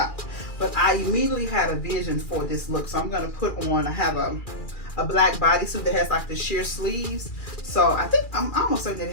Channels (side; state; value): right; late; 2.4 ms